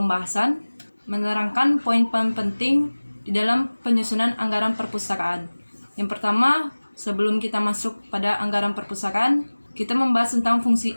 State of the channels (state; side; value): inverted; both; correlation -1.00